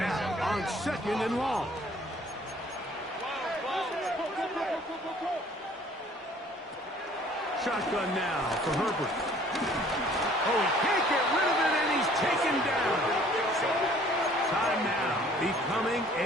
on second and long. Shotgun now for Herbert. Oh, he can't get rid of it, and he's taken down. Time now becoming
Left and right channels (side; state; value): both; normal; correlation 0.55